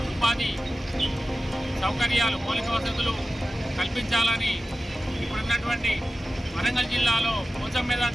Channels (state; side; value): normal; both; correlation 0.94